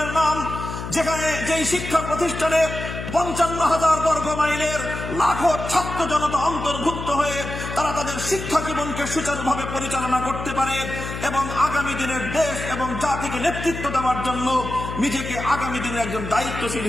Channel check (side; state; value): left; noise; hum, 7 dB below the sound